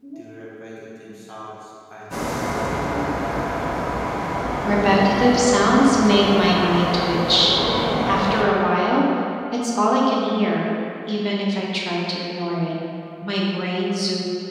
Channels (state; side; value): identical; both; correlation 1.00